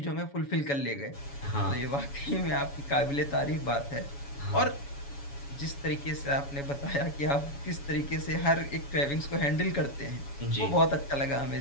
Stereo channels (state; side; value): late; right; 7.1 ms